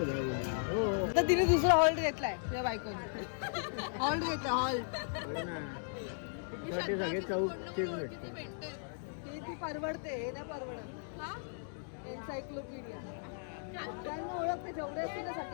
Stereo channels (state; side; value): silent; right; digital silence